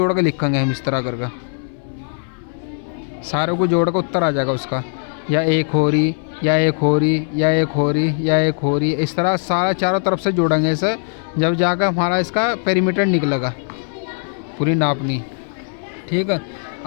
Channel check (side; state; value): right; silent; digital silence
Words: के लिखेंगे हम इस तरह करके। सारों को जोड़ कर उत्तर आ जाएगा उसका, या एक हो रही, या एक हो रही, या एक हो रही, या एक हो रही। इस तरह सारा चारों तरफ से जोड़ेंगे इसे, जब जाकर हमारा इसका पेरीमीटर निकलेगा पूरी नापनी। ठीक है।